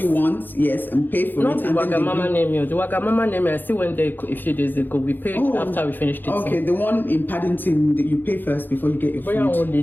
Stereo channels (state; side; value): late; right; 0.091 ms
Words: you want, yes, and pay for Not it. Not the Wagamama name. The Wagamama name, I still went there a few days ago. We paid after we finished it. Okay, the one in Paddington, that you pay first before you get your food.